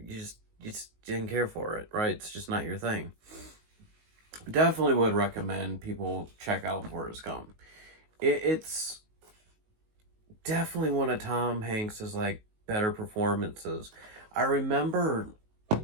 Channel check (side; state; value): left; late; 19 ms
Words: just didn't care for it, right? It's just not your thing. Definitely would recommend people check out Forrest Gump. It's definitely one of Tom Hanks's better performances. I remember